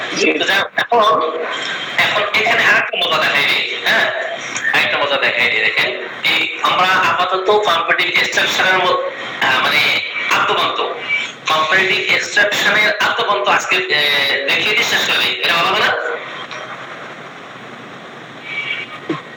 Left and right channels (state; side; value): identical; both; correlation 1.00